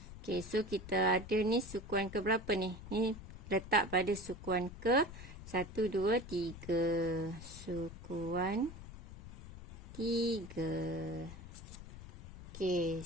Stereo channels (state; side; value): noise; left; rumble, 13 dB below the sound